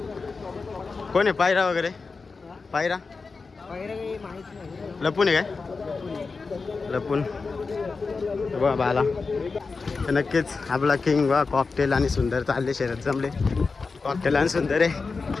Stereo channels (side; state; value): right; quieter; 4.4 dB